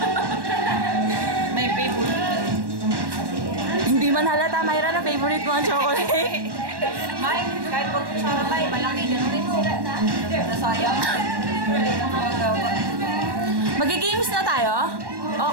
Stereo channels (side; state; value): left; late; 1.1 ms